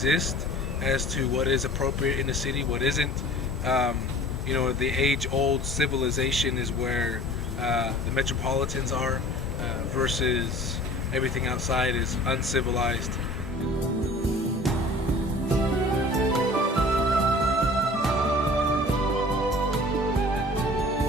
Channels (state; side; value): normal; both; correlation 0.45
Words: as to what is appropriate in a city, what isn't. You know, the age-old civilization is where the metropolitans are versus everything outside is uncivilized.